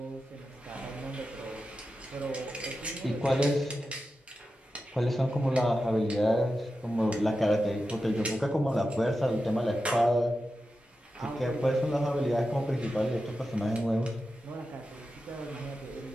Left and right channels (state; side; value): normal; both; correlation 0.91